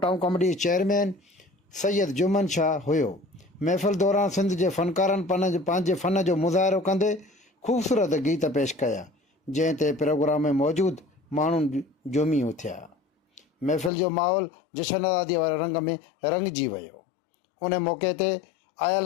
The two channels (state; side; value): drops out; right; at 13.9 s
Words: town committee chairman Syed Juman Shah हुयो। महफ़िल दौरान सिंध जे फ़नकारनि पंहिंजे फ़न जो मुज़ाहिरो कंदे ख़ूबसूरत गीत पेश कया, जंहिं ते प्रोग्राम में मौजूदु माण्हू झूमी उथिया। महफ़िल जो माहौल जशन आज़ादीअ वारे रंग में रंगिजी वियो। उन मौक़े ते